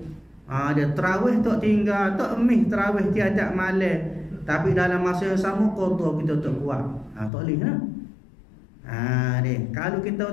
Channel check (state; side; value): drops out; right; at 7.3 s